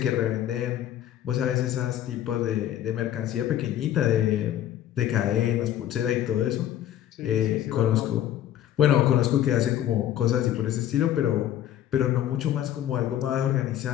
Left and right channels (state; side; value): quieter; right; 11.8 dB